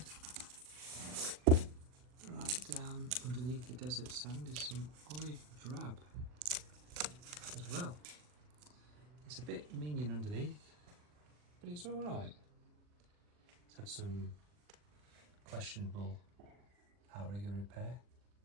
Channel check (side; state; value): left; late; 40 ms